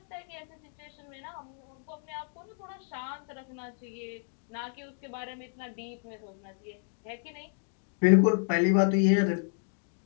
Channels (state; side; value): silent; right; digital silence